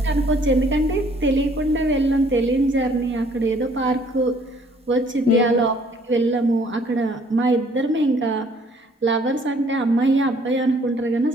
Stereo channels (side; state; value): both; normal; correlation 0.60